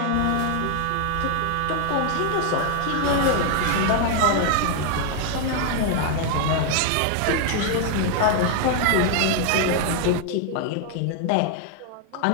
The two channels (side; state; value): both; different; correlation 0.00